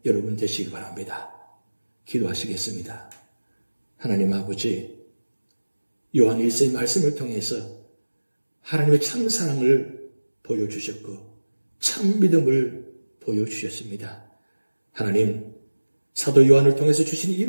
여러분 되시기 바랍니다. 기도하시겠습니다. 하나님 아버지, 요한 1서의 말씀을 통해서 하나님의 참 사랑을 보여주셨고 참 믿음을 보여주셨습니다. 하나님, 사도 요한을 통해서 주신 이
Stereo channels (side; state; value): both; inverted; correlation -1.00